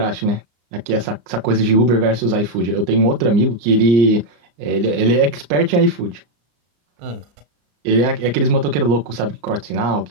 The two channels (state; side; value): late; left; 34 ms